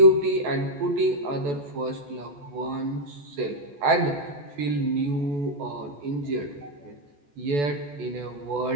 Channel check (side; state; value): left; late; 14 ms